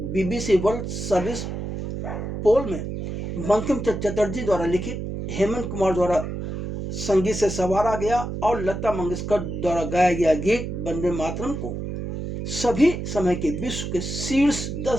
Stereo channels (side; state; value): right; noise; hum, 5 dB below the sound